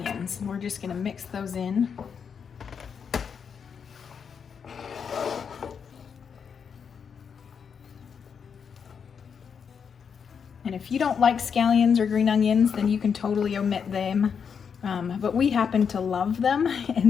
And we're just going to mix those in. And if you don't like scallions or green onions, then you can totally omit them. But we happen to love them,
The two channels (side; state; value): right; quieter; 6.7 dB